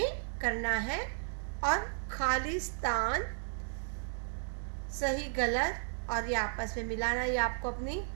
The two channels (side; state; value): left; silent; digital silence